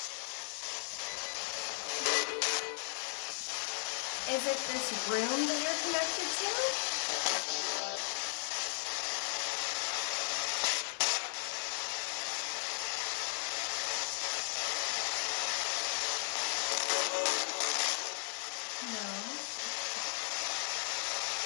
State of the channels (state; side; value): silent; right; 54 dB below the other